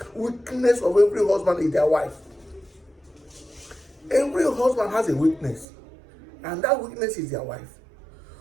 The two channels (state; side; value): drops out; left; at 5.7 s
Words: weakness of every husband is their wife. Every husband has a weakness, and that weakness is their wife.